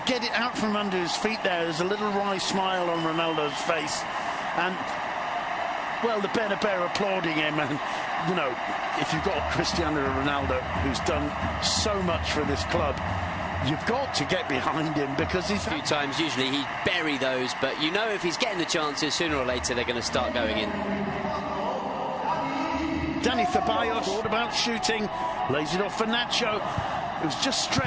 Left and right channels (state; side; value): identical; both; correlation 1.00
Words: get it out from under his feet there. There's a little wry smile on Ronaldo's face. And, well, the Bernabeu applauding him. And, you know, if you've got Cristiano Ronaldo, who's done so much for this club, you've got to get behind him, because he's... A few times, usually he'd bury those, but you know if he's getting the chances, sooner or later they're going to start going in. Dani Ceballos thought about shooting, lays it off for Nacho. It was just